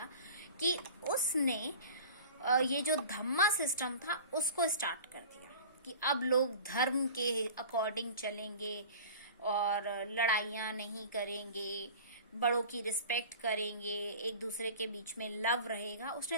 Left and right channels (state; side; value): inverted; both; correlation -0.39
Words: कि उसने ये जो धम्मा सिस्टम था उसको स्टार्ट कर दिया कि अब लोग धर्म के अकॉर्डिंग चलेंगे और लड़ाइयाँ नहीं करेंगे, बड़ों की रिस्पेक्ट करेंगे, एक दूसरे के बीच में लव रहेगा।